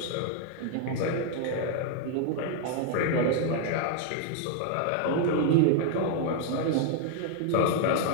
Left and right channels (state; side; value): different; both; correlation 0.00